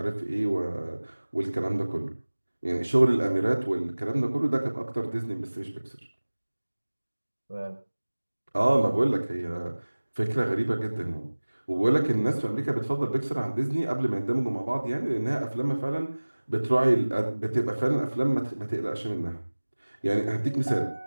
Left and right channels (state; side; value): inverted; both; correlation -1.00